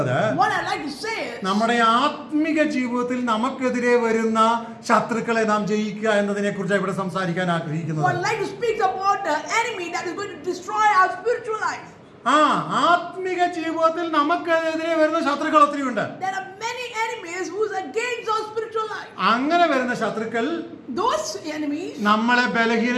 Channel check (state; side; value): identical; both; correlation 1.00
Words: What I like to say is, നമ്മുടെ ആത്മിക ജീവിതത്തിൽ നമുക്കെതിരെ വരുന്ന ശത്രുക്കളെ നാം ജയിക്കുക എന്നതിനെ കുറിച്ച് ഇവിടെ സംസാരിക്കാൻ ആഗ്രഹിക്കുന്നത്. What I like to speak about the enemy that is going to destroy our spiritual life. ആത്മിക ജീവിതത്തിൽ നമുക്കെതിരെ വരുന്ന ശത്രുക്കൾ ഒത്തിരിയുണ്ട്. There are many enemies who is against our spiritual life. അങ്ങനെ വരുന്ന ശത്രുക്കൾ Those enemies, നമ്മളെ